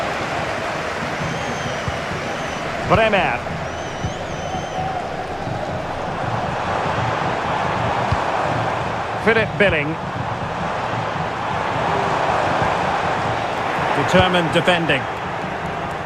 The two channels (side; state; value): both; identical; correlation 1.00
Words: Bremer. Philip Billing. Determined defending.